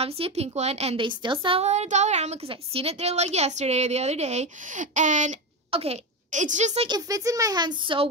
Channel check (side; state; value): both; normal; correlation 0.15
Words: a pink one, and they still sell it at Dollarama because I seen it there like yesterday or the other day. And okay, it's just like it fits in my hands so